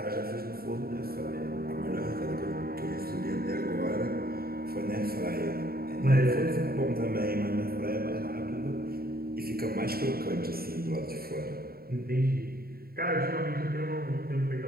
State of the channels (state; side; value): late; left; 0.44 ms